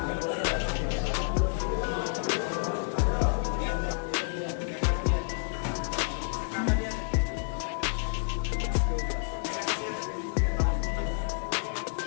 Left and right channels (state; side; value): silent; right; digital silence